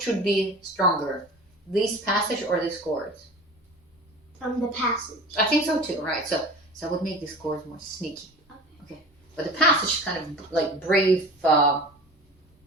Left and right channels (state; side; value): normal; both; correlation 0.36